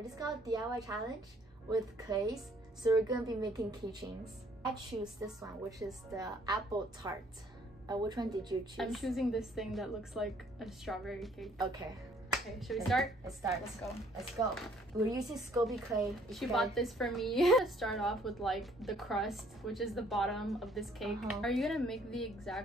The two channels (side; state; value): both; normal; correlation 0.62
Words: just called DIY challenge with clays. So we're gonna be making keychains. I choose this one, which is the apple tart. Which one did you choose? I'm choosing this thing that looks like a strawberry cake. Okay. Okay, should we start? Let's start. Let's go. Let's go. We're using Scoby clay. She bought this for me. Start off with like the crust, which is the bottom of this cake. Are you gonna make the